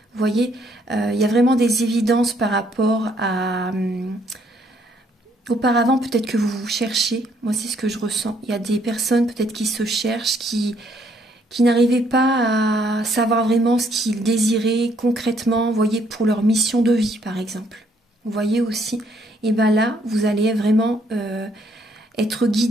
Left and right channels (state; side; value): normal; both; correlation 0.68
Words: Vous voyez, il y a vraiment des évidences par rapport à... auparavant, peut-être que vous vous cherchez, moi c'est ce que je ressens. Il y a des personnes peut-être qui se cherchent, qui n'arrivaient pas à savoir vraiment ce qu'ils désiraient concrètement, vous voyez, pour leur mission de vie par exemple. Vous voyez aussi, et bien là, vous allez vraiment être